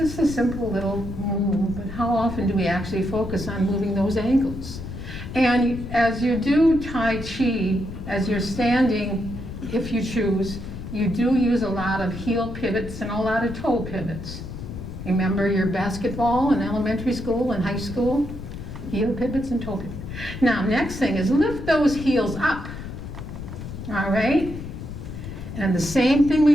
a simple little move, but how often do we actually focus on moving those ankles? And as you do Tai Chi, as you're standing, if you choose, you do use a lot of heel pivots and a lot of toe pivots. Remember your basketball in elementary school and high school? Heel pivots and toe pivots. Now, next thing is lift those heels up. All right? And the same thing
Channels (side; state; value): left; noise; rumble, 9 dB below the sound